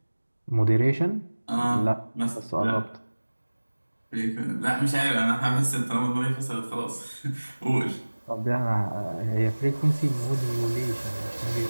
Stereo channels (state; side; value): inverted; both; correlation -1.00